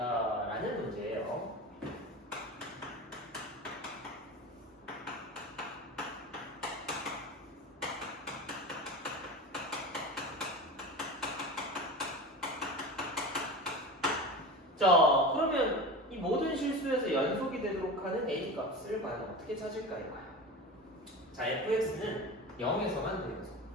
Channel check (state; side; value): normal; both; correlation 0.29